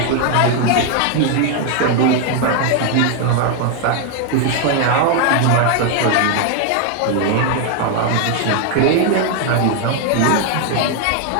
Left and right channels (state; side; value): different; both; correlation 0.00